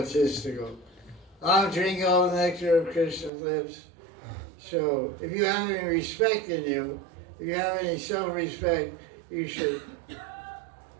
I'm drinking all the nectar of Krishna's lips. So if you have any respect in you, if you have any self-respect, you should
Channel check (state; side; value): drops out; left; at 3.3 s